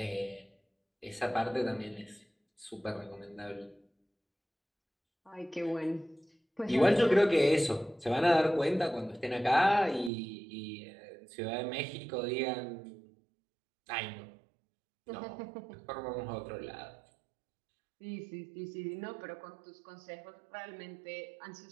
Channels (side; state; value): left; drops out; at 10.1 s